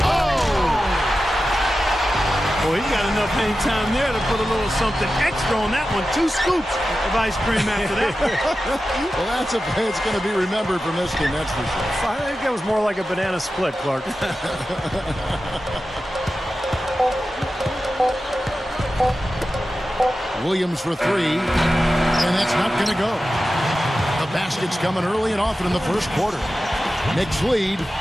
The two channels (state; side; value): normal; both; correlation 0.93